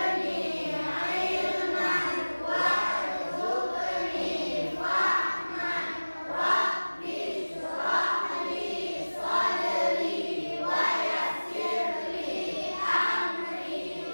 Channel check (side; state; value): both; inverted; correlation -1.00